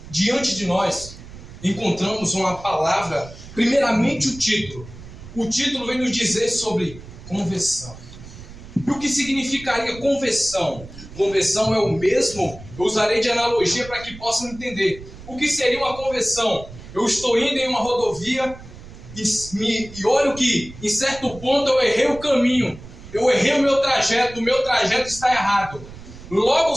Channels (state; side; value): noise; right; rumble, 16 dB below the sound